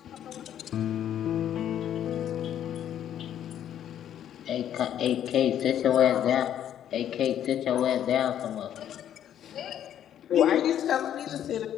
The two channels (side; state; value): right; quieter; 10.4 dB